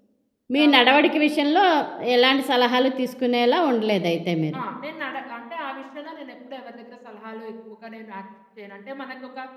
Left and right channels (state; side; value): identical; both; correlation 1.00